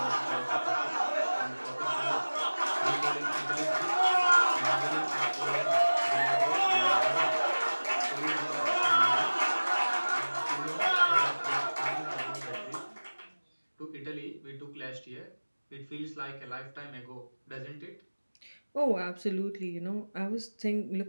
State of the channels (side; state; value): both; inverted; correlation -1.00